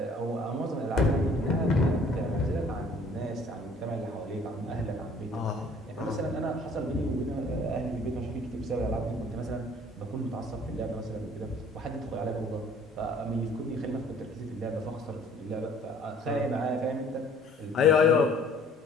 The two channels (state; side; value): normal; both; correlation 0.55